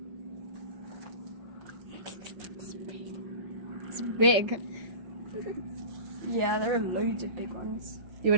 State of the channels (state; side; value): late; left; 5.4 ms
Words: It's big. Yeah, there are loads of big ones.